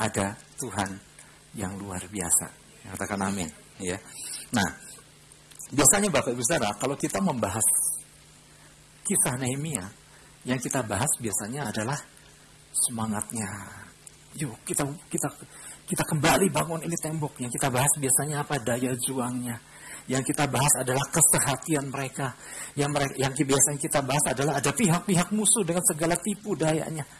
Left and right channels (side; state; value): both; identical; correlation 1.00